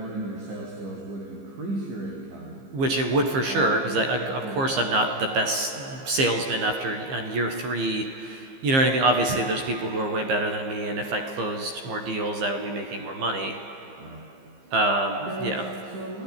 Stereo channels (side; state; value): left; late; 15 ms